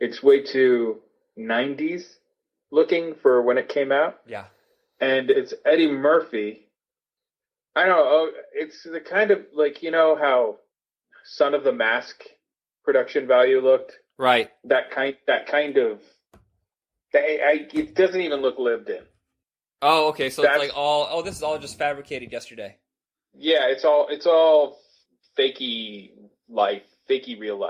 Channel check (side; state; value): both; identical; correlation 1.00